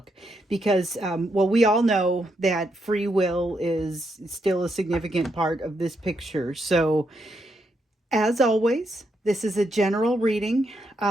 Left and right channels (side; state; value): both; normal; correlation 0.79